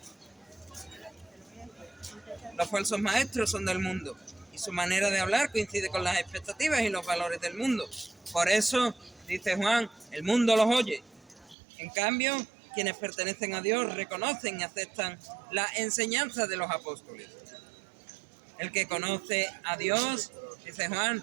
Los falsos maestros son del mundo y su manera de hablar coincide con las expectativas y los valores del mundo. Por eso, dice Juan, el mundo los oye. En cambio, quienes pertenecen a Dios reconocen y aceptan la enseñanza de los apóstoles. El que conoce a Dios, dice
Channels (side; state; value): left; drops out; at 11.6 s